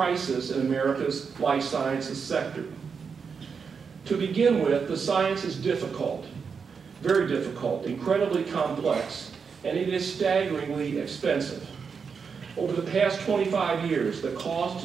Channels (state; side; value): quieter; left; 5.9 dB